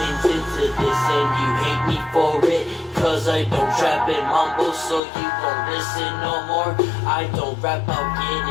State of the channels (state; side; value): drops out; right; at 5.0 s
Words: into this and you hate me for it. Cause I don't trap and mumble, so you won't listen no more. I don't rap about